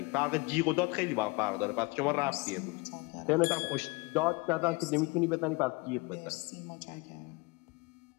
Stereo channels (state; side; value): quieter; right; 26.1 dB